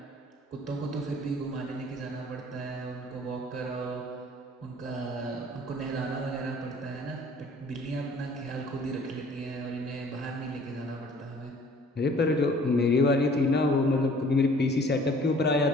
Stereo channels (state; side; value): normal; both; correlation 0.53